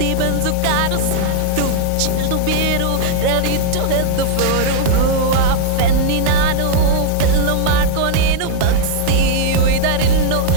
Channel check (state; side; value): different; both; correlation -0.01